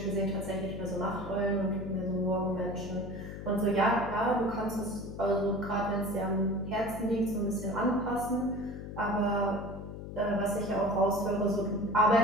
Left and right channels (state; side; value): noise; left; hum, 9 dB below the sound